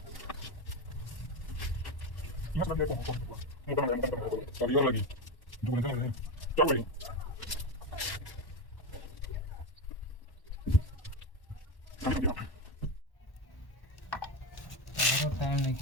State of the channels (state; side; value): late; right; 1.1 ms